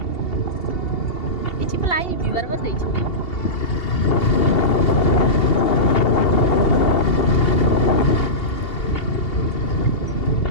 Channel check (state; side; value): late; right; 2.8 ms